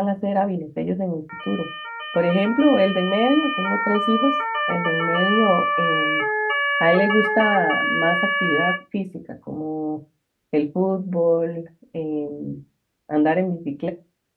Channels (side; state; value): both; identical; correlation 1.00